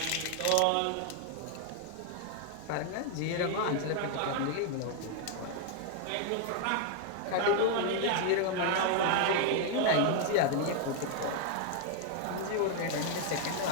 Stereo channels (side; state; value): both; different; correlation 0.00